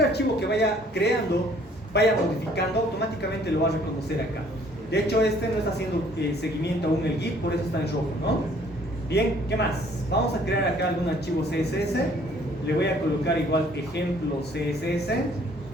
archivo que vaya creando, vaya modificando, automáticamente lo va a reconocer acá. De hecho, este no está haciendo seguimiento aún el Git, por eso está en rojo, ¿no? Bien, ¿qué más? Vamos a crear acá algún archivo CSS. Le voy a colocar igual ejemplo CSS,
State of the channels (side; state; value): both; normal; correlation 0.59